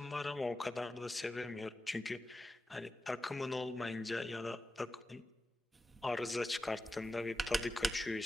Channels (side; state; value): both; normal; correlation 0.91